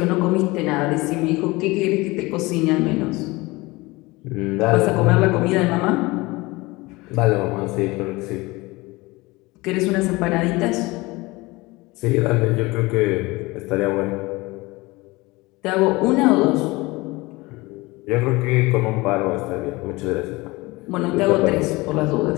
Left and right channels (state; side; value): quieter; right; 22.3 dB